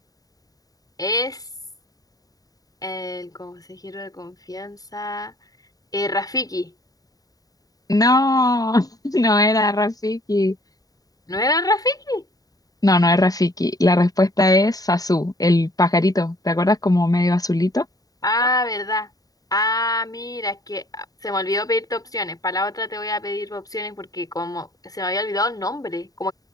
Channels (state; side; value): late; right; 0.18 ms